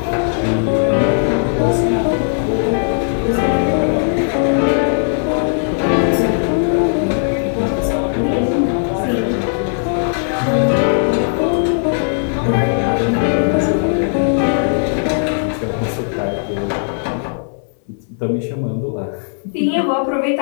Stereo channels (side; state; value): right; silent; 66 dB below the other